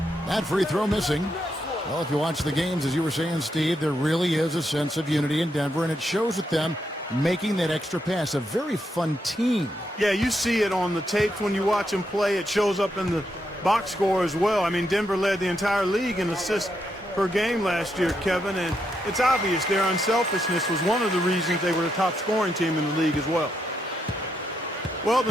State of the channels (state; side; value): normal; both; correlation 0.81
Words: free throw missing. Well, if you watch the games, as you were saying, Steve, there really is a sense of unity in Denver, and it shows with them making that extra pass. A very fun team. Yeah, you see it on the tapes when you watch them play. It shows up in the box score as well. I mean, Denver led the entire league in assists per game last year, Kevin, and it's obvious their unselfishness was one of the reasons they were the top scoring team in the league as well. Well,